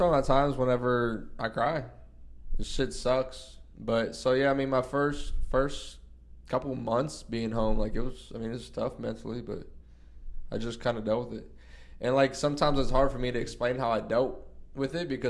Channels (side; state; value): both; identical; correlation 1.00